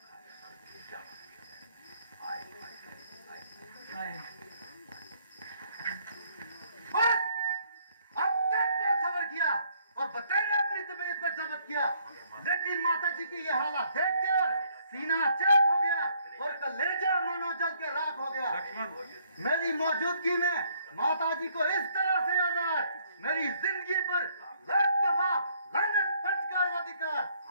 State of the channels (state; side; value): inverted; both; correlation -0.67